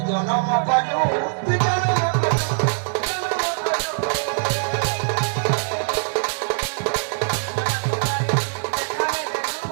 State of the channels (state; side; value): silent; left; 62 dB below the other